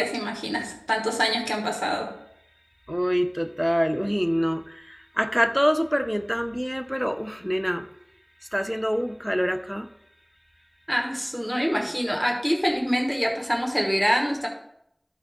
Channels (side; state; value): both; identical; correlation 1.00